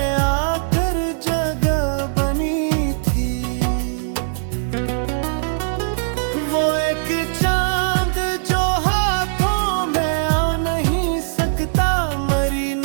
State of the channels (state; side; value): silent; left; 66 dB below the other